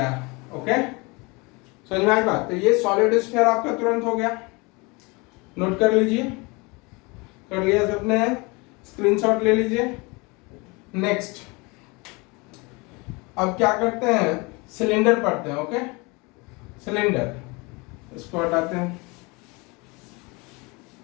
ओके। समझ में आई बात, तो ये सॉलिड स्फीयर आपका तुरंत हो गया, नोट कर लीजिए, कर लिया सबने, स्क्रीनशॉट ले लीजिए। नेक्स्ट अब क्या करते हैं, सिलेंडर पढ़ते हैं, ओके। सिलेंडर, इसको हटाते हैं,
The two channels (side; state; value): right; quieter; 27.1 dB